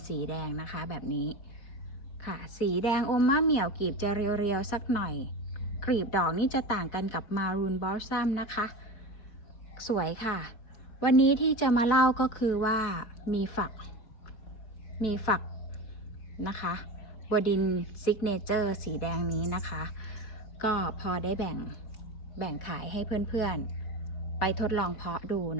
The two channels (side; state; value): right; late; 4.6 ms